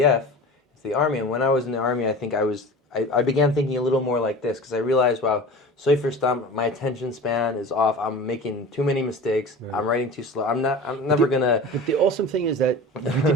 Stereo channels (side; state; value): both; normal; correlation 0.35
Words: into the Army. And when I was in the Army, I think I began thinking a little more like this, because I realized, wow, sofer STAM, my attention span is off. I'm making too many mistakes. Right. I'm writing too slow. I'm never gonna. But the awesome thing is that you